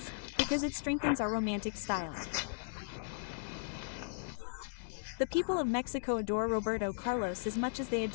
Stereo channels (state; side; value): silent; right; digital silence